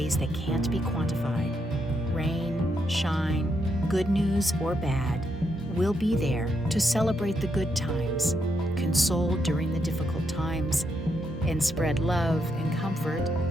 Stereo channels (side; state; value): both; normal; correlation 0.79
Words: that can't be quantified. Rain, shine, good news or bad, we'll be there to celebrate the good times, console during the difficult times, and spread love and comfort